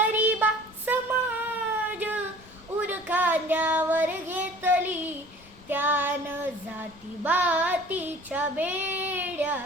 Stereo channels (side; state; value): left; noise; rumble, 24 dB below the sound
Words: समाज, उर खांद्यावर घेतली त्यानं. जाती बातीच्या बेड्या